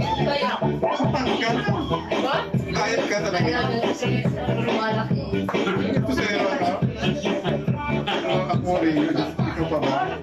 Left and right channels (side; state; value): both; identical; correlation 1.00